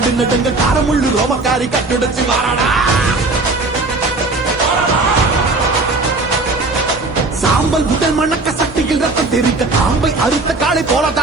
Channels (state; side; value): quieter; left; 3.3 dB